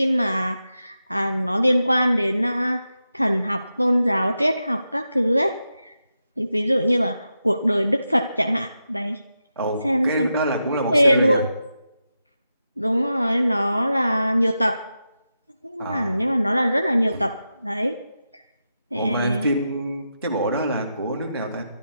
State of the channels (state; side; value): inverted; both; correlation -0.89